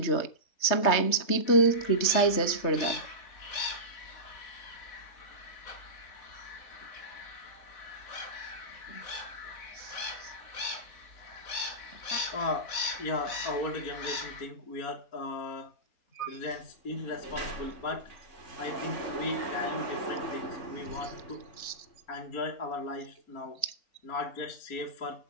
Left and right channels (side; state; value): right; late; 3.3 ms